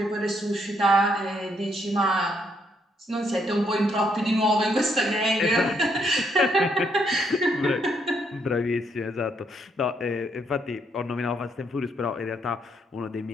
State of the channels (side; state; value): both; normal; correlation 0.73